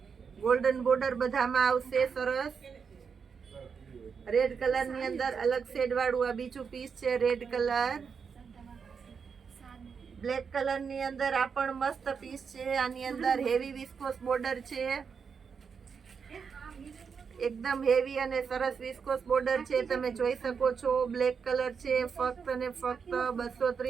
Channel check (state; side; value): quieter; left; 6.1 dB